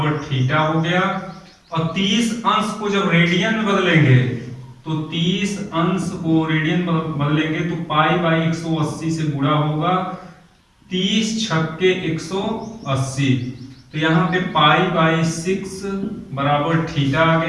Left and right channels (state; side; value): identical; both; correlation 1.00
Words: थीटा हो गया, और 30 अंश को जब रेडियन में बदलेंगे तो 30 अंश को रेडियन बदलेंगे तो π/180 से गुणा होगा, 30 छक्के 180, तो यहाँ पे π/6 बराबर थीटा आ